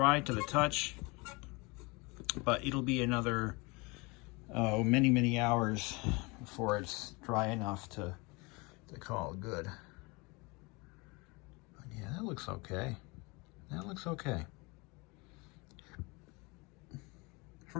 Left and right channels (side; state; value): right; quieter; 26.8 dB